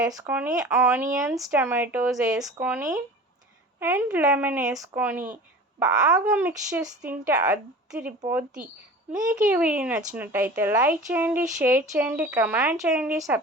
వేసుకొని ఆనియన్స్, టమాటోస్ వేసుకొని అండ్ లెమన్ వేసుకొని బాగా మిక్స్ చేసి తింటే అదిరిపోద్ది. మీకు ఈ వీడియో నచ్చినట్టయితే లైక్ చేయండి, షేర్ చేయండి, కమెంట్ చేయండి,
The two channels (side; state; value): both; normal; correlation 0.38